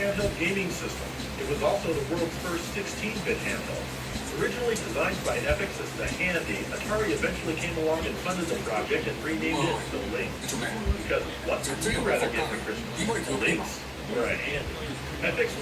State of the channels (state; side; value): identical; both; correlation 1.00